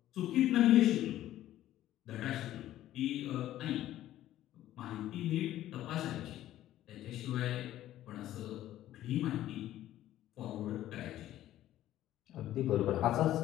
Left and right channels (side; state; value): right; quieter; 13.4 dB